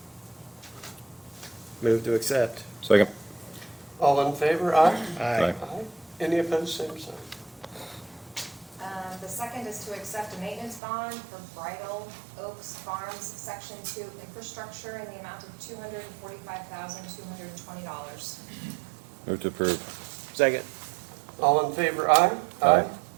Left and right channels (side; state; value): left; drops out; at 10.8 s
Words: Move to accept. Second. All in favor, aye? Aye. Any opposed, same sign. The second is to accept a maintenance bond for Bridal Oaks Farms Section 2 infrastructure in the amount of $245,220. Move to approve. Second. All in favor, aye? Aye.